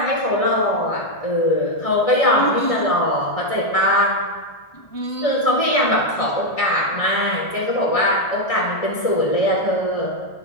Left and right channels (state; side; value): late; right; 1.6 ms